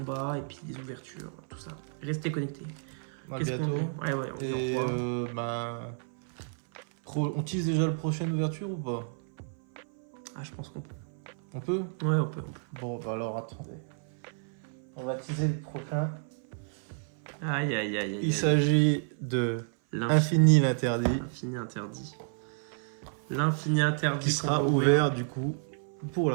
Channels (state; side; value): silent; left; 57 dB below the other